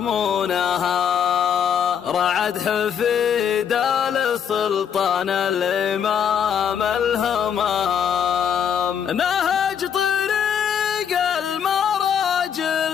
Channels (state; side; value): quieter; right; 8.1 dB